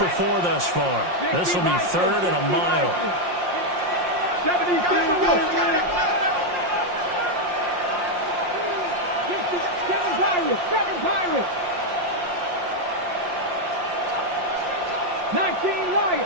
4 thus far. This will be 3rd and a mile. 72. 7 Pirates. 19 Lions.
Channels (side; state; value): left; late; 5.6 ms